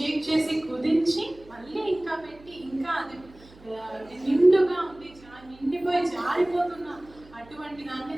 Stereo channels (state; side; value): noise; right; hum, 24 dB below the sound